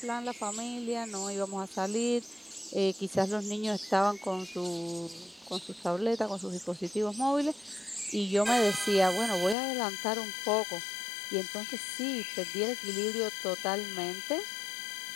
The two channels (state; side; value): drops out; right; at 9.6 s